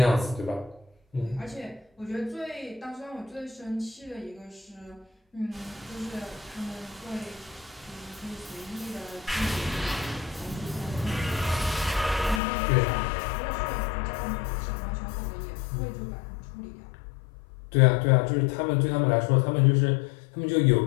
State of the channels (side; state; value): right; drops out; at 12.4 s